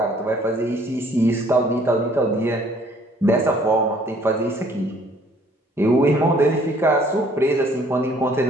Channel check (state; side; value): normal; both; correlation 0.59